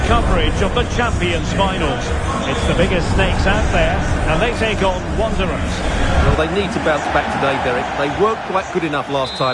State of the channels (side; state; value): both; identical; correlation 1.00